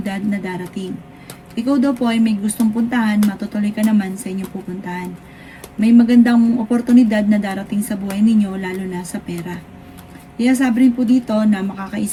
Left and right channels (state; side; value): identical; both; correlation 1.00